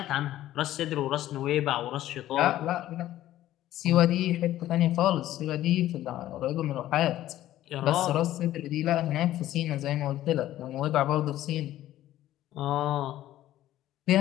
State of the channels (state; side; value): quieter; right; 13.8 dB